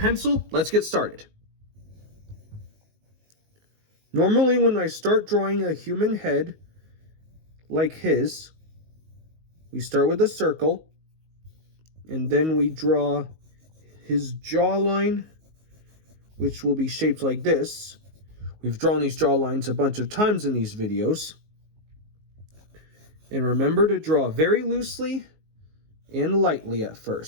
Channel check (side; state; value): left; late; 19 ms